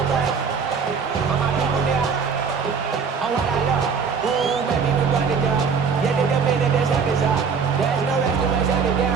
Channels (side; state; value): left; quieter; 5.8 dB